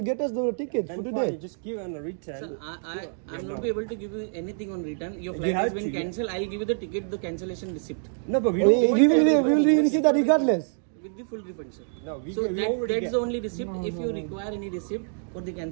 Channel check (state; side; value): silent; left; digital silence